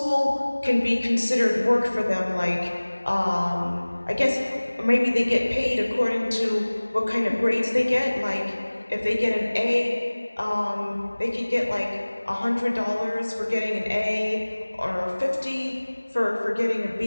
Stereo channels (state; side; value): inverted; both; correlation -1.00